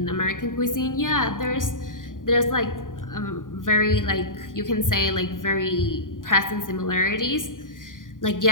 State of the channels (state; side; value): late; right; 0.89 ms